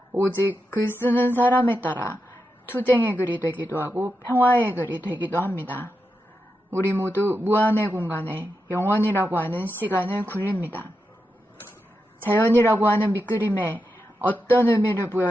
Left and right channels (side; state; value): both; normal; correlation 0.87